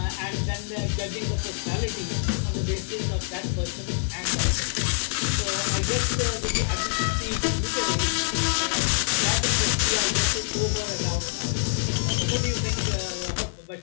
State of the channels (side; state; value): right; silent; 60 dB below the other